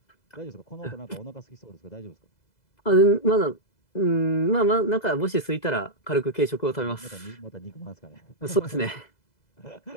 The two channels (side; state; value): right; late; 2.0 ms